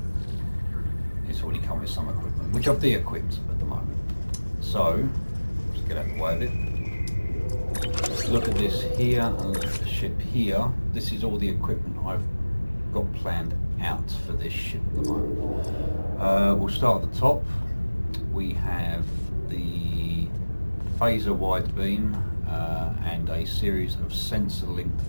it's already come with some equipment, which I've de-equipped at the moment. So, let's get out of the way of it. Look at this here and look at the ship here. This is all the equipment I've got planned out for this ship at the moment. We'll start at the top. We have the phaser wide beam and a series of sensor linked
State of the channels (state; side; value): inverted; both; correlation -1.00